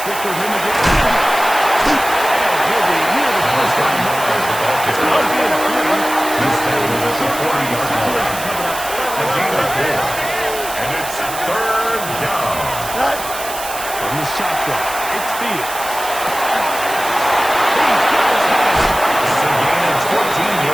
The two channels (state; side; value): noise; right; hiss, 9 dB below the sound